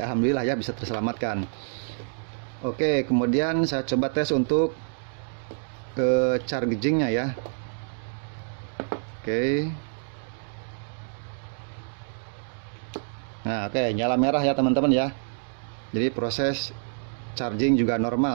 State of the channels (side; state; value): left; silent; digital silence